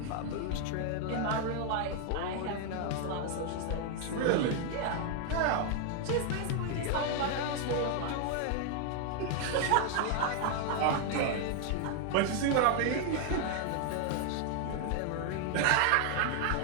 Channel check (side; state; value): both; different; correlation 0.00